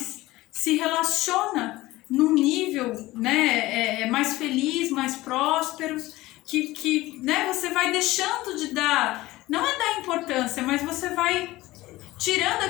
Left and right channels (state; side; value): quieter; right; 18.2 dB